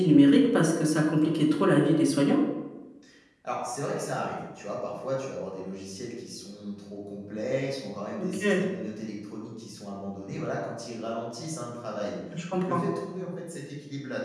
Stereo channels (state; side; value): identical; both; correlation 1.00